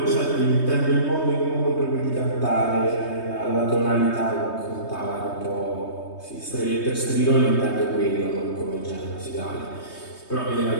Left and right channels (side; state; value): right; late; 3.2 ms